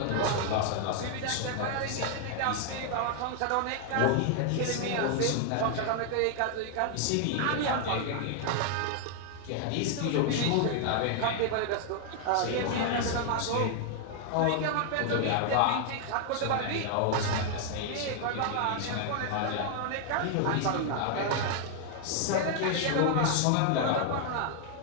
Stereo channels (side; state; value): both; different; correlation 0.00